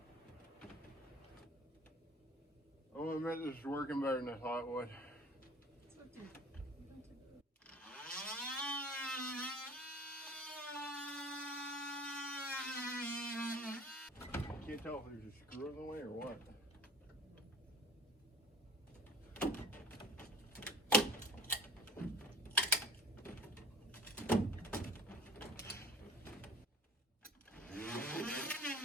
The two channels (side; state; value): both; normal; correlation 0.45